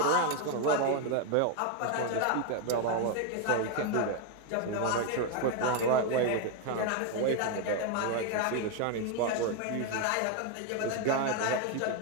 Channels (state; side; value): different; both; correlation 0.01